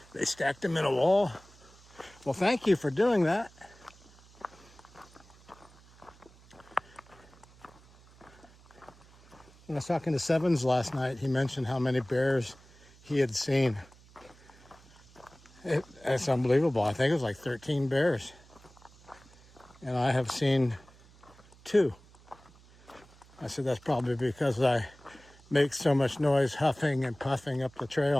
They stacked them in a wall. Well, thank you for doing that. When I was talking to Sevens last night, he mentioned how many bears he had seen. It's unbelievable. I think it was like 13 bears. And I have seen 2. I said that's probably because I make so much noise huffing and puffing up the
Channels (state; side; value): noise; right; hum, 25 dB below the sound